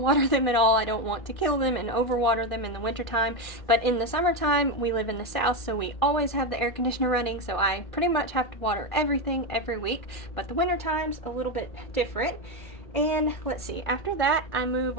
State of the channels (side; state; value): right; late; 1.6 ms